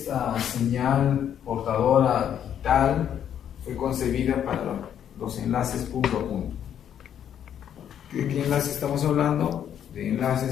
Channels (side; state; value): right; quieter; 9.5 dB